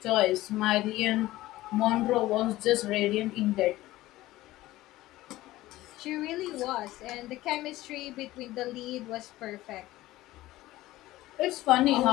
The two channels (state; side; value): quieter; right; 16.8 dB